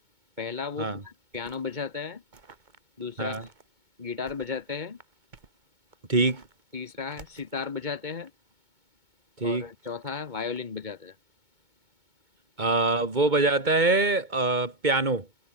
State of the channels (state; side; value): late; left; 2.2 ms